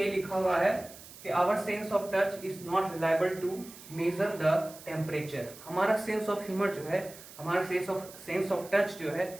लिखा हुआ है कि our sense of touch is not reliable to measure the temperature. हमारा सेंस ऑफ ह्यूमर जो है, हमारा सेंस ऑफ टच जो है,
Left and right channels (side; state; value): right; noise; hiss, 17 dB below the sound